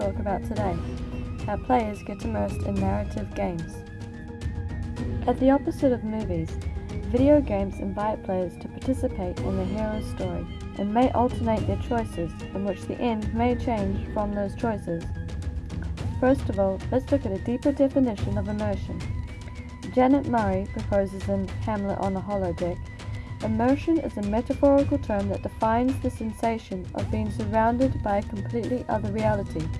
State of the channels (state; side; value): identical; both; correlation 1.00